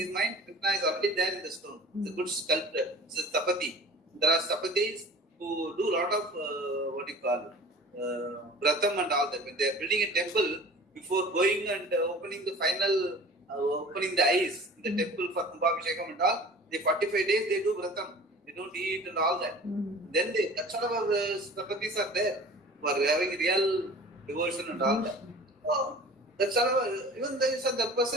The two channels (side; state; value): both; normal; correlation 0.42